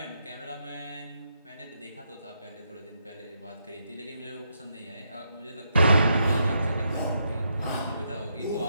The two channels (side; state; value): both; inverted; correlation -0.79